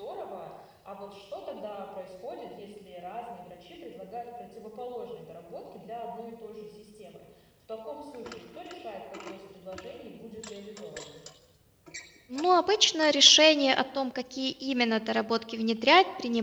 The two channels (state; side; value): identical; both; correlation 1.00